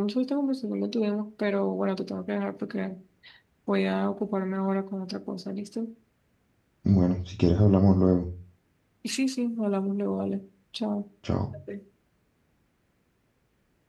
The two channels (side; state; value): both; identical; correlation 1.00